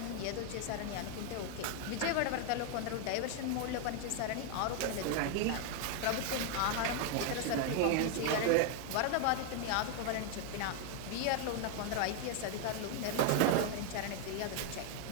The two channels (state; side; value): different; both; correlation 0.00